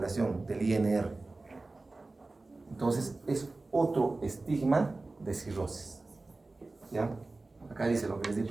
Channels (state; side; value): quieter; left; 3.3 dB